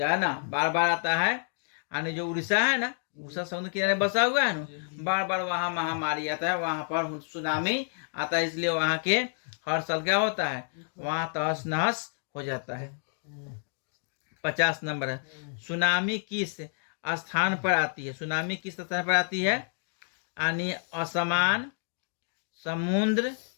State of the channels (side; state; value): right; silent; digital silence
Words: है ना, बार बार आता है। यानी जो उड़ीसा है ना, उड़ीसा समुद्र किनारे बसा हुआ है ना, बार बार वहाँ महामारी आता है, वहां पर सुनामी आता है। इसलिए वहां के हर साल क्या होता है? वहां तहस नहस हो जाता है। 50 नंबर है। सुनामी किस स्थान पर आती है? सुनामी किस स्थान पर आती है? यानी असमान, समुद्र,